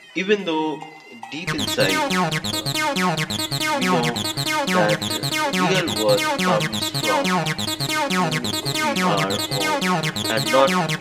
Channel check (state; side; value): identical; both; correlation 1.00